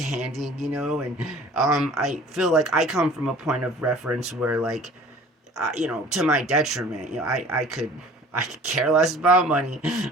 and I feel like I come from a point of reference where, like, to my detriment, I could care less about money.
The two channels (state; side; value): normal; both; correlation 0.47